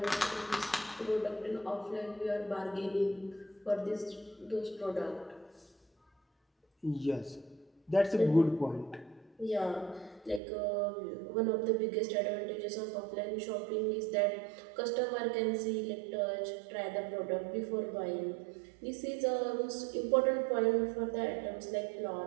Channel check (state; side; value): drops out; left; at 10.4 s